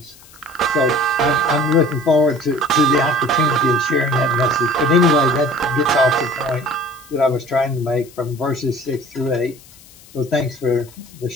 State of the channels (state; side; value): noise; left; hiss, 23 dB below the sound